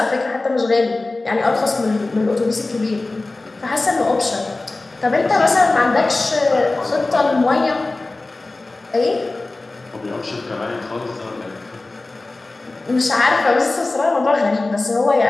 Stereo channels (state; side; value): quieter; right; 3.2 dB